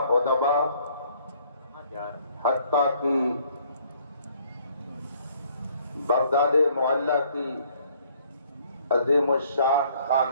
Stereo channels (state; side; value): inverted; both; correlation -0.62